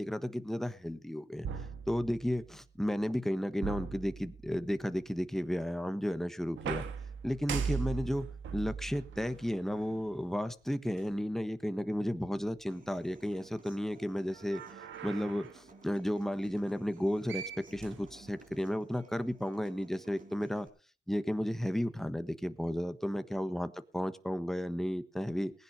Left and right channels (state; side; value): normal; both; correlation 0.95